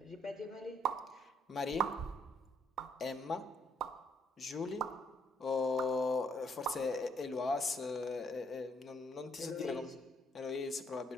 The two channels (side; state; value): both; normal; correlation 0.70